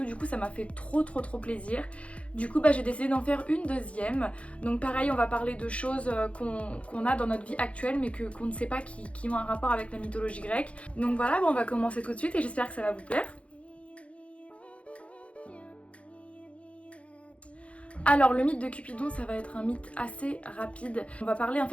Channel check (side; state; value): right; late; 0.062 ms